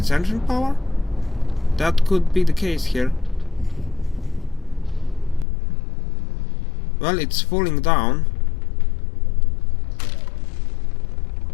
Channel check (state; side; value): drops out; right; at 5.5 s